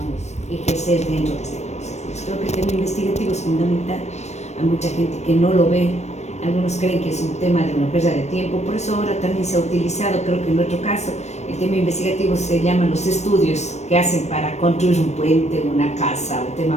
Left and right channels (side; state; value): right; late; 0.32 ms